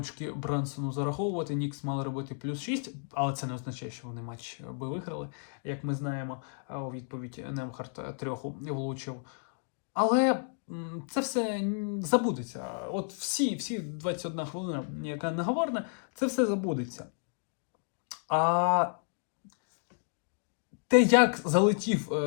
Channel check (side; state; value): right; silent; 57 dB below the other